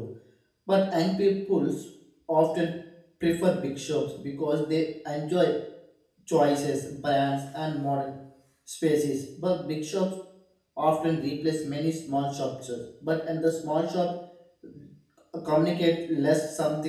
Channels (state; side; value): identical; both; correlation 1.00